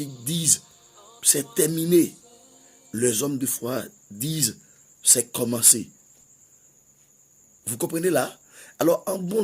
disent c'est terminé, les hommes de foi disent c'est commencé. Vous comprenez là? Alors en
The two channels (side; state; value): both; identical; correlation 1.00